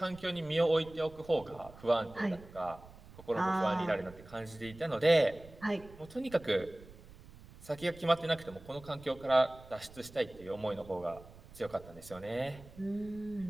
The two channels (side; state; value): right; noise; rumble, 20 dB below the sound